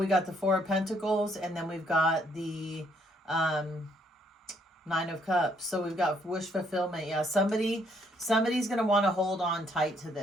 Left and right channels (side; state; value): both; normal; correlation 0.69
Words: got the 4 of Pentacles, and then we've got the 9 of Cups. So we've got wish fulfillment. Yeah, somebody's going to want to hold on tight to